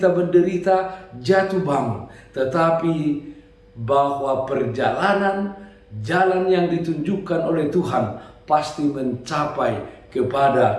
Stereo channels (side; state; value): both; identical; correlation 1.00